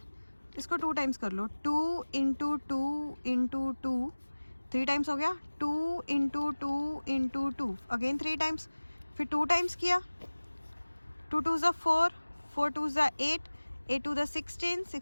इसको 2 टाइम्स कर लो। 2 into 2 into 2, 3 टाइम्स हो गया। 2 into 2 into 2, अगेन 3 टाइम्स। फिर 2 टाइम्स किया। 2 2 ज़ा 4, 4 2 ज़ा 8, 8 2 ज़ा 16,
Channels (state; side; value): inverted; both; correlation -1.00